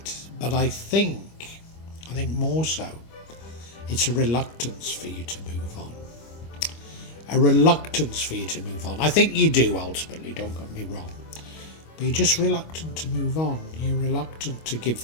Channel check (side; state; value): right; late; 25 ms